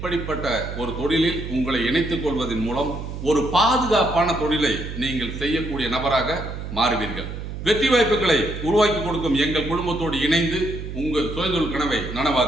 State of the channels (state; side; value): noise; right; hum, 8 dB below the sound